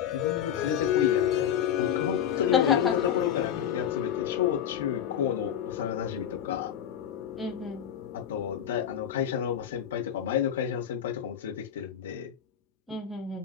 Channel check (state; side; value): quieter; right; 9.4 dB